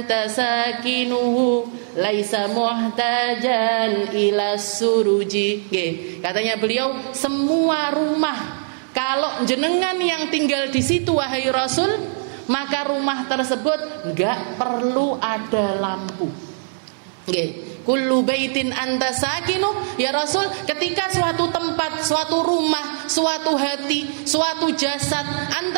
sakinuhu laisa muhtajan ila suruji. Katanya beliau, semua rumah kalau jenengan yang tinggal di situ wahai Rasul, maka rumah tersebut enggak perlu ada lampu. Kullu baitin anta sakinu, ya Rasul, ketika suatu tempat, suatu rumah, suatu hati, suatu jasad,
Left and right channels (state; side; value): silent; left; digital silence